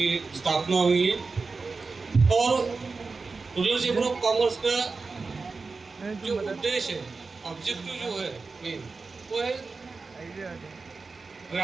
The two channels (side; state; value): left; quieter; 4.2 dB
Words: स्थापना हुई है और रूरल चैम्बर ऑफ कॉमर्स का जो उद्देश्य है, ऑब्जेक्टिव जो है मेन, वो है